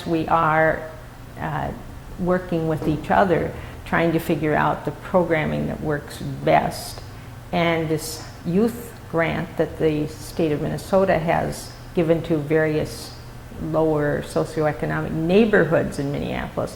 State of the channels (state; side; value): identical; both; correlation 1.00